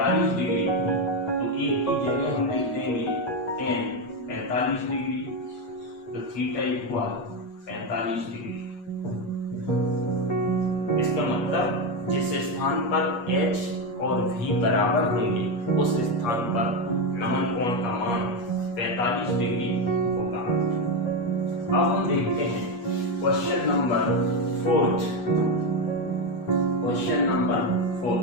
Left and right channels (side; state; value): right; late; 8.4 ms